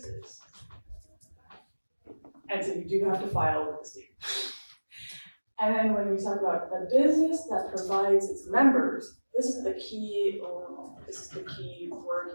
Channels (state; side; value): inverted; both; correlation -1.00